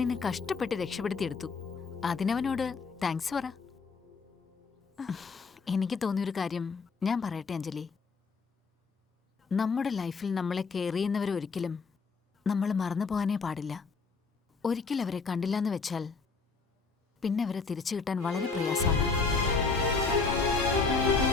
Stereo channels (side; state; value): right; quieter; 4.7 dB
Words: കഷ്ടപ്പെട്ട് രക്ഷപ്പെടുത്തിയെടുത്തു. അതിനവനോട് താങ്ക്സ് പറ. എനിക്ക് തോന്നിയൊരു കാര്യം ഞാൻ പറയട്ടെ അഞ്ജലി. നമ്മുടെ ലൈഫിൽ നമ്മളെ കെയർ ചെയ്യുന്നവരൊരിക്കലും നമ്മൾ മറന്നു പോകാനേ പാടില്ല. ഒരിക്കൽ അവരെ കണ്ടില്ലെന്ന് വെച്ചാൽ പിന്നെ അവരെ തിരിച്ചു കിട്ടാൻ വളരെ പ്രയാസമാണ്.